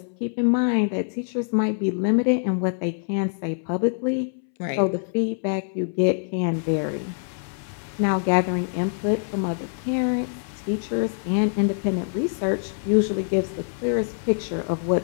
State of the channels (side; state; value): right; silent; 62 dB below the other